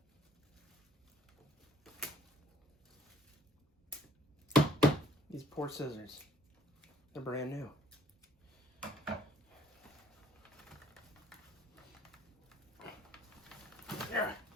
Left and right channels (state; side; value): normal; both; correlation 0.59